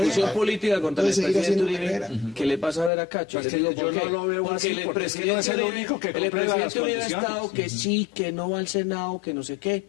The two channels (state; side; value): drops out; right; at 2.9 s